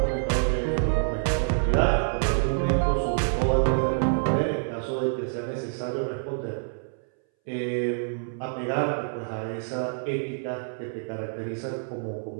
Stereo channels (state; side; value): silent; left; 60 dB below the other